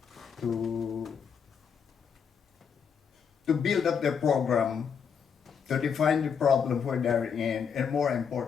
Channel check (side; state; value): right; quieter; 6.9 dB